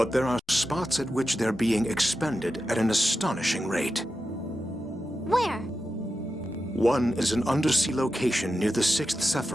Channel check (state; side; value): normal; both; correlation 0.90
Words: there are spots at which they're being expended at an astonishing rate. Where? One is an undersea location near the 6th